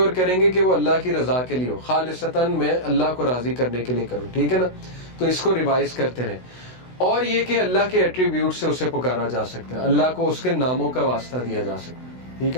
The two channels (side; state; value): right; late; 16 ms